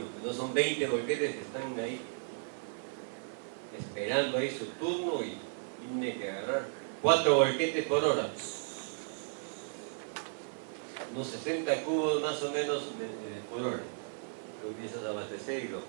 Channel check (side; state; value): left; silent; 55 dB below the other